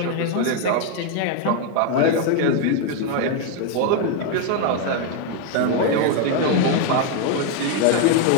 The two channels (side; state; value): both; different; correlation 0.01